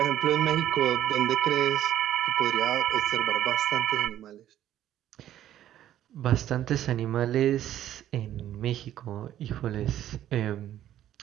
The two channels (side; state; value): left; quieter; 11.9 dB